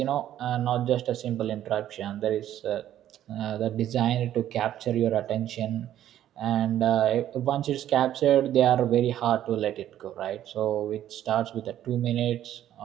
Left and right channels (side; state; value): left; quieter; 11.8 dB